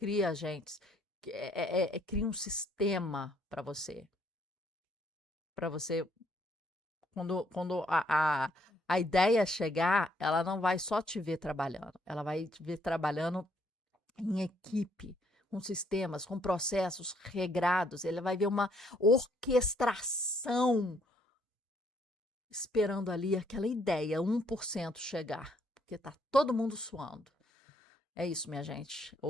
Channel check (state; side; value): normal; both; correlation 0.69